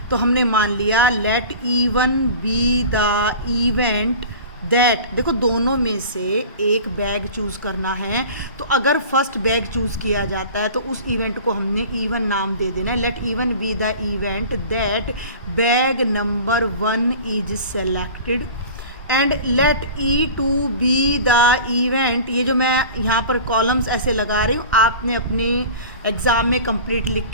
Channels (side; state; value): both; inverted; correlation -0.39